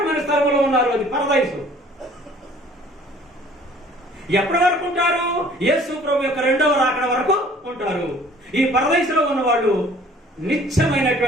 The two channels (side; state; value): both; normal; correlation 0.53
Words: స్థలంలో ఉన్నారు. అది పరదైసు. ఎప్పటి వరకు ఉంటారు? యేసు ప్రభు యొక్క 2వ రాకడ వరకు ఉంటారు. ఈ పరదైసులో ఉన్న వాళ్ళు